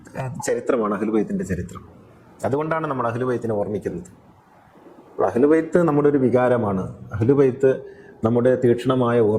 ചരിത്രമാണ് അഹ്ലുബൈത്തിന്റെ ചരിത്രം. അതുകൊണ്ടാണ് നമ്മൾ അഹ്ലുബൈത്തിനെ ഓർമ്മിക്കുന്നത്. അഹ്ലുബൈത്ത് നമ്മുടെ ഒരു വികാരമാണ്. അഹ്ലുബൈത്ത് നമ്മുടെ തീക്ഷ്ണമായ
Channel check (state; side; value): identical; both; correlation 1.00